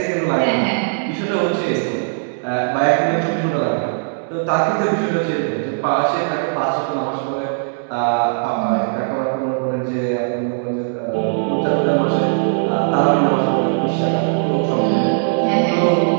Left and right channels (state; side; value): silent; left; digital silence